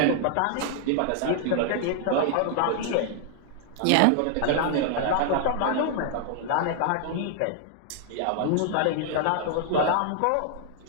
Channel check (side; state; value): both; different; correlation 0.00